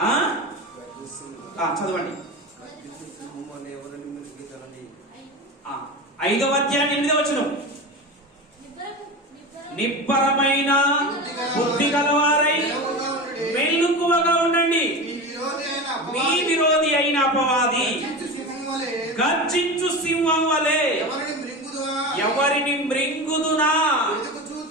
చదవండి. 5వ అధ్యాయం 8వ వచనం. నిబ్బరమైన బుద్ధి గలవారై మెలకువగా ఉండండి. మీ విరోధి అయిన అపవాది గర్జించు సింహం వలె ఎవరిని మృంగుదునా?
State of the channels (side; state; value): both; normal; correlation 0.26